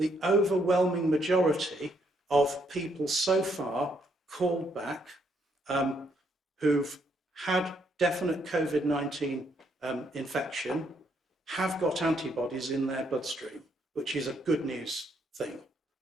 overwhelming majority of people so far called back, who've had definite COVID-19 infection, have got antibodies in their bloodstream, which is a good news thing.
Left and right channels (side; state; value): both; normal; correlation 0.73